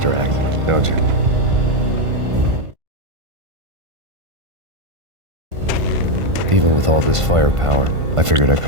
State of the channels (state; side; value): late; left; 1.5 ms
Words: act, don't you? Even with all this firepower, I figured I